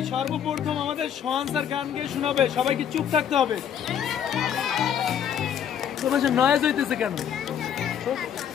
সর্বপ্রথম আমাদের সোহান স্যার গান গিয়ে শোনাবে, সবাইকে চুপ থাকতে হবে। তোমার নয়েজ হইতেছে কেন?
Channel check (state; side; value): quieter; right; 9.0 dB